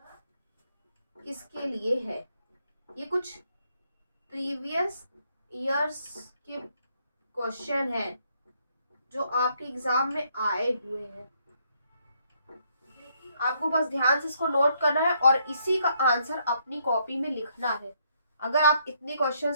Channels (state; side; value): inverted; both; correlation -0.72